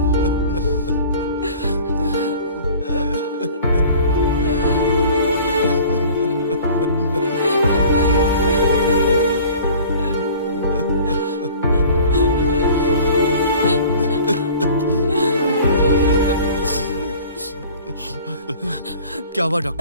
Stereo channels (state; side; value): inverted; both; correlation -0.46